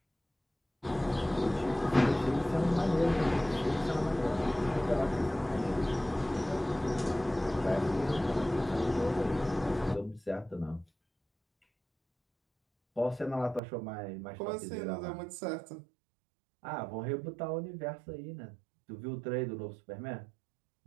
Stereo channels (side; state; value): left; drops out; at 13.6 s